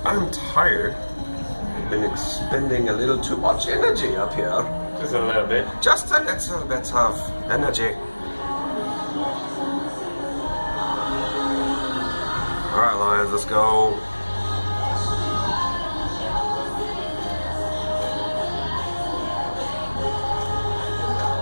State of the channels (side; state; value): both; inverted; correlation -1.00